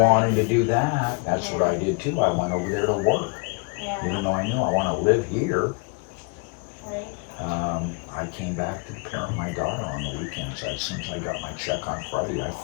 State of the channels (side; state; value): right; quieter; 34.3 dB